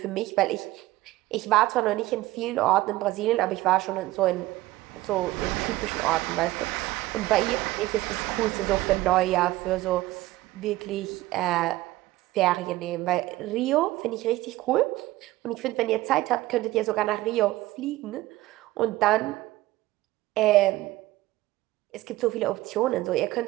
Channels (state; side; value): quieter; left; 17.6 dB